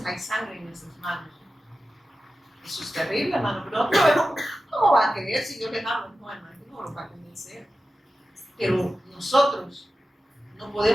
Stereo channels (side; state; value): both; normal; correlation 0.93